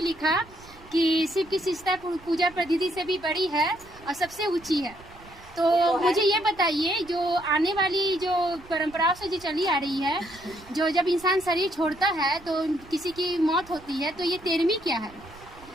लिखा कि शिव की शिष्टता पूजा पद्धति से भी बड़ी है और सबसे ऊंची है। तो मुझे ये बताइए जो आने वाली जो परंपराओं से जो चली आ रही है, जो जब इंसान शरीर छोड़ता है तो किसी की मौत होती है, तो ये 13वीं क्या है?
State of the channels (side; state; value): right; noise; rumble, 22 dB below the sound